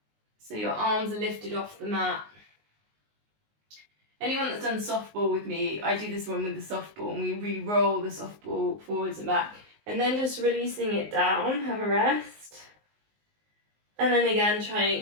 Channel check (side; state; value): left; late; 19 ms